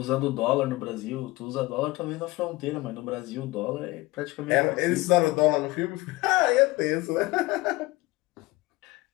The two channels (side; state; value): right; quieter; 20.2 dB